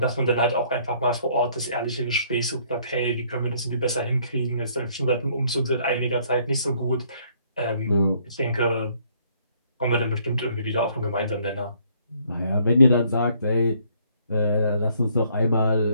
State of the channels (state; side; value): inverted; both; correlation -0.65